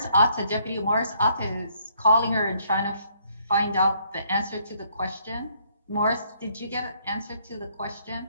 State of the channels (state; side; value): inverted; both; correlation -0.68